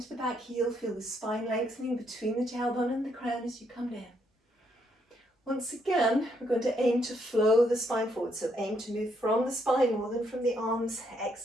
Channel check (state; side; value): normal; both; correlation 0.74